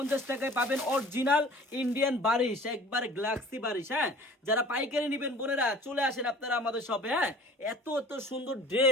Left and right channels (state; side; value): normal; both; correlation 0.47